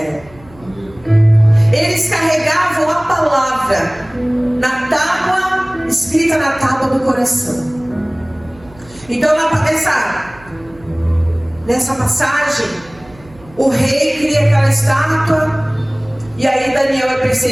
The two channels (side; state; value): right; noise; hum, 24 dB below the sound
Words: Eles carregavam a palavra na tábua, escrita na tábua do coração. Então nessa passagem, o rei cria aquela estátua, e aí Daniel é